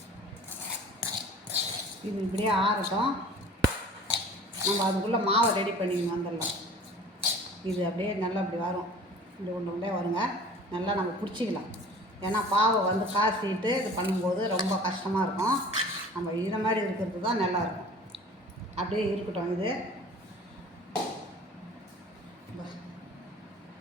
இது இப்படியே ஆறட்டும். நம்ம அதுக்குள்ளே மாவை ரெடி பண்ணிக்கணும். வந்துடலாம். இது அப்படியே நல்லா இப்படி வரும். இப்படி ஒன்று வருங்க. நல்லா நம்ம பிடிச்சிக்கலாம். ஏன்னா பாவை வந்து காய்ச்சிட்டு இது பண்ணும்போது ரொம்ப கஷ்டமாக இருக்கும். நம்ம இதை மாதிரி இருக்கிறது தான் நல்லாயிருக்கும். அப்படியே இருக்கட்டும். இது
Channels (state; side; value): normal; both; correlation 0.45